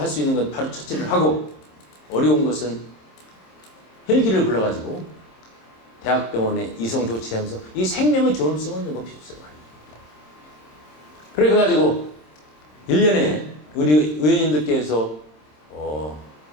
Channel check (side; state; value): right; late; 26 ms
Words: 수 있는 건 바로 처치를 하고 어려운 것은 헬기를 불러가지고 대학병원에 이송 조치하면서 이 생명의 존엄성을 높여주세요. 그래가지고 1년에 우리 의원님들께서